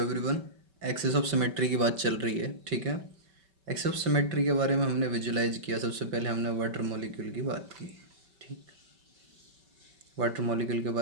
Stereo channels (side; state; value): left; late; 5.2 ms